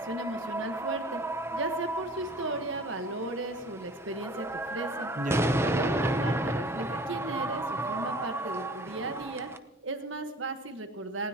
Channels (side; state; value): both; normal; correlation 0.45